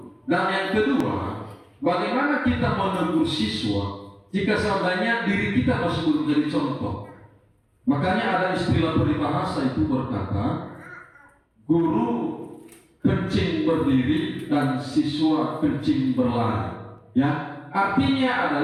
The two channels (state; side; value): identical; both; correlation 1.00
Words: Dan yang kedua, bagaimana kita menegur siswa jika seandainya diri kita masih belum jadi contoh. Makanya ada istilah peribahasa itu berkata, guru kencing berdiri dan siswa kencing berlari. Ya, artinya